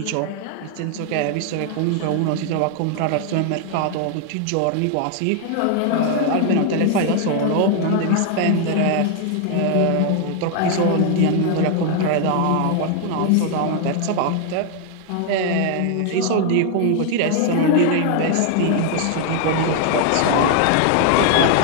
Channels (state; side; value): different; both; correlation 0.00